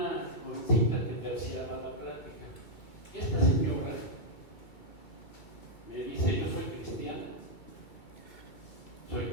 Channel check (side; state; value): right; late; 2.3 ms